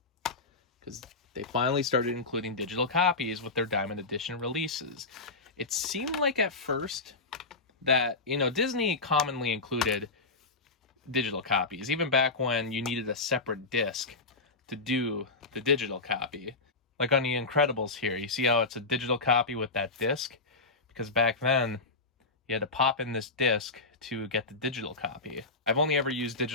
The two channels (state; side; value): quieter; right; 3.6 dB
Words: because they finally started including digital copies with their Diamond Edition releases. It seemed like at first that, Disney commonly included digital copies, even back when you needed a separate disc to do the digital copy. Like on The Incredibles here, you see how it's a digital copy with that disc? Because back then, you had to pop in this disc to get the digital copy. I've only ever used